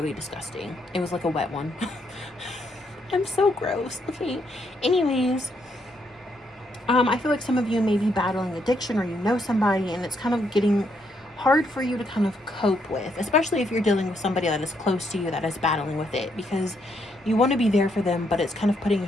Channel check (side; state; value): both; normal; correlation 0.75